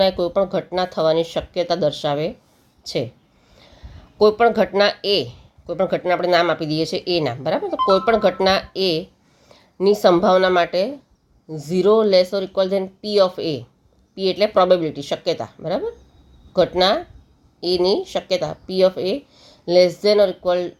એ કોઈ પણ ઘટના થવાની શક્યતા દર્શાવે છે. કોઈપણ ઘટના કોઈપણ ઘટના આપણે નામ આપી દઈએ છીએ એ નામ. બરાબર, તો કોઈપણ ઘટના ની સંભાવના માટે 0 less or equal than P of A. P એટલે પ્રોબેબિલિટી, શક્યતા. બરાબર, ઘટના એની શક્યતા P of A less than or equal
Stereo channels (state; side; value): identical; both; correlation 1.00